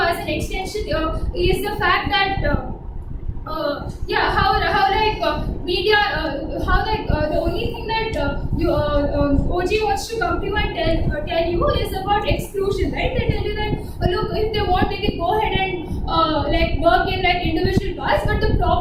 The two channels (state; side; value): identical; both; correlation 1.00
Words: an extension is the fact that the only thing that OG wants to come to you and tell you is about exclusion, right? They tell you that look, if they want, they can go ahead and work in like individual paths. But the